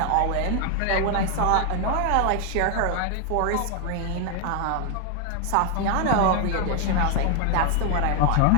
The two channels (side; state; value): both; different; correlation 0.00